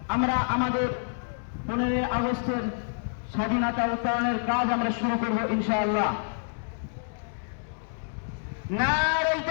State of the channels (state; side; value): silent; right; digital silence